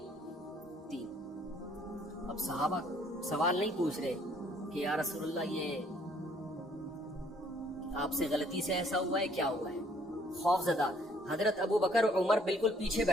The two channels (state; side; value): normal; both; correlation 0.63